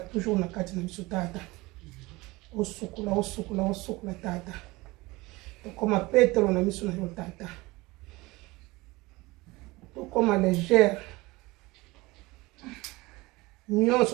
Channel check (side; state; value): left; quieter; 21.8 dB